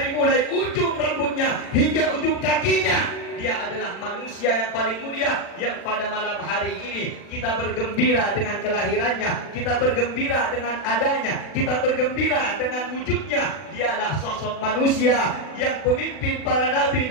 mulai ujung rambutnya hingga ujung kakinya. Dia adalah manusia yang paling mulia, yang pada malam hari ini kita bergembira dengan kelahirannya, kita bergembira dengan adanya, kita bergembira dengan wujudnya. Dialah sosok manusia yang pemimpin para nabi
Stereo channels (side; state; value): right; late; 40 ms